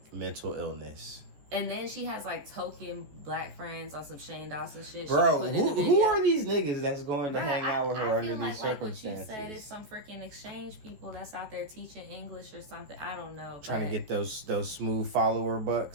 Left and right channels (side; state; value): left; late; 14 ms